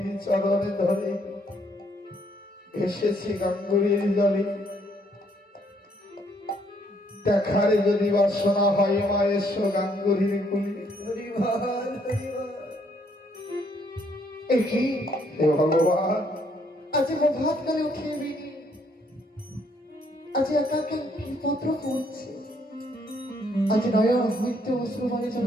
চরণে ধরে এসেছি গাঙ্গুরির জলে। দেখার যদি বাসনা হয় মা এসো গাঙ্গুরির কুলি। হে ভগবান, আজ প্রভাত করে উঠে বিনি, আজ একা কি পত্র পড়ছে, আজ নয়ন হইতে অশ্রু মানে যেন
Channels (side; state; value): both; normal; correlation 0.68